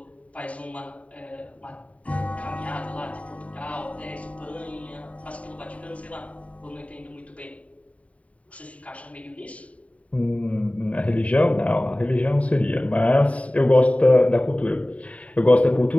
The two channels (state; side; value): late; right; 0.067 ms